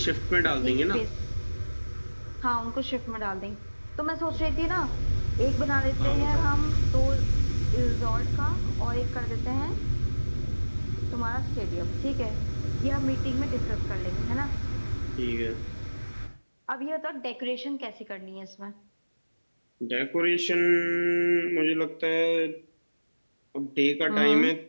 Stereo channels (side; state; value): both; inverted; correlation -1.00